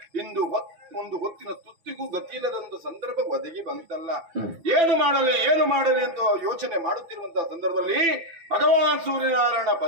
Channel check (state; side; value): late; left; 6.0 ms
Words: ಇಂದು ಒಂದು ಹೊತ್ತಿನ ತುತ್ತಿಗೂ ಗತಿಯಿಲ್ಲದಂತ ಸಂದರ್ಭ ಒದಗಿ ಬಂತಲ್ಲ. ಏನು ಮಾಡಲಿ ಅಂತ ಯೋಚನೆ ಮಾಡುತ್ತಿರುವಂತಹ ಸಂದರ್ಭದಲ್ಲಿ ಭಗವಾನ್ ಸೂರ್ಯನಾರಾಯಣ